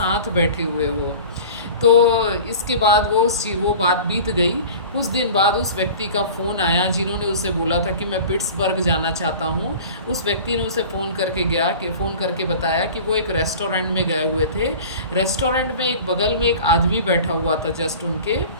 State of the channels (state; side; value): inverted; both; correlation -0.40